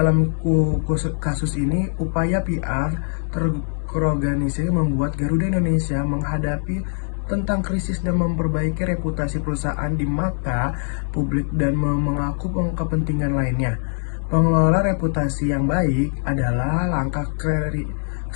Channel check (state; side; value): silent; right; digital silence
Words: kasus ini, upaya PR terorganisir membuat Garuda Indonesia menghadapi tentang krisis dan memperbaiki reputasi perusahaan di mata publik dan mengaku kepentingan lainnya. Pengelola reputasi yang baik adalah langkah